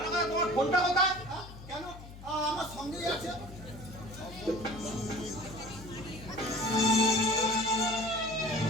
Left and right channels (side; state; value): left; noise; hum, 15 dB below the sound